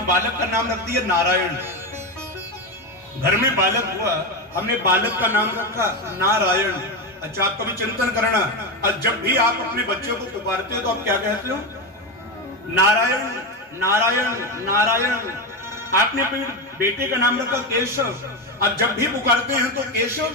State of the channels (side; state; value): both; normal; correlation 0.14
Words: बालक का नाम रख दिया नारायण। घर में बालक हुआ, हमने बालक का नाम रखा नारायण। अच्छा, आप कभी चिंतन करना, जब भी आप अपने बच्चे को पुकारते हो तो आप क्या कहते हो? नारायण नारायण नारायण। आपने अपने बेटे का नाम रखा केशव। अब जब भी पुकारते हैं तो केशव